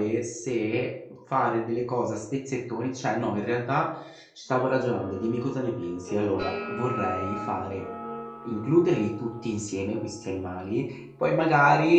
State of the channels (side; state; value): both; identical; correlation 1.00